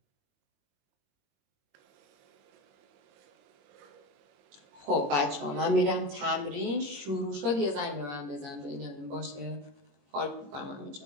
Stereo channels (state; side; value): late; left; 21 ms